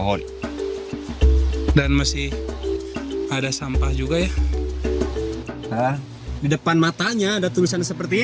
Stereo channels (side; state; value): both; identical; correlation 1.00